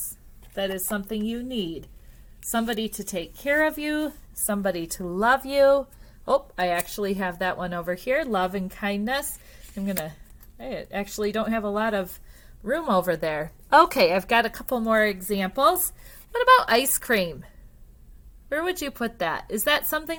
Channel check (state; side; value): identical; both; correlation 1.00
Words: that is something you need. Somebody to take care of you, somebody to love you. Oh, I actually have that one over here, love and kindness. I actually don't have a lot of room over there. Okay, I've got a couple more examples. What about ice cream? Where would you put that? Is that